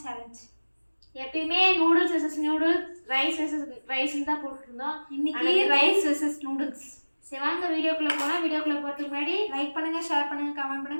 சேலஞ்ச். எப்பயுமே noodles versus noodles, rice versus ரைஸ்ன்னு தான் போட்டுருந்தோம். இன்னைக்கு ரைஸ் வெர்சஸ் நூடுல்ஸ். சரி வாங்க வீடியோக்குள்ளே போனால். வீடியோக்குள்ளே போகிறதுக்கு முன்னாடி லைக் பண்ணுங்கள், ஷேர் பண்ணுங்கள், கமெண்ட்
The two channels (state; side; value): inverted; both; correlation -1.00